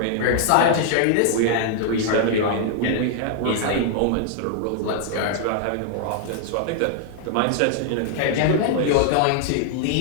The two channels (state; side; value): different; both; correlation -0.01